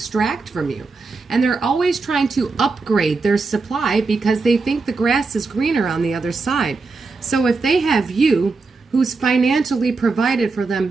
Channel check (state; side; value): quieter; left; 4.1 dB